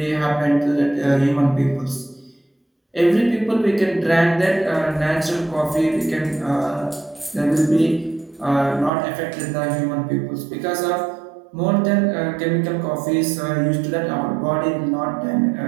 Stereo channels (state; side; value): drops out; left; at 8.9 s